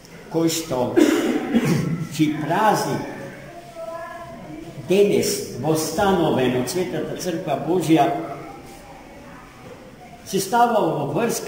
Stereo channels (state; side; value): identical; both; correlation 1.00